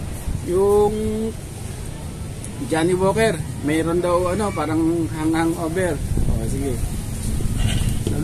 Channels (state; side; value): identical; both; correlation 1.00